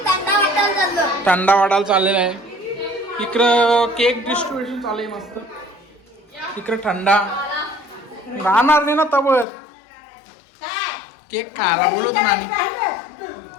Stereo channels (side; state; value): right; drops out; at 9.5 s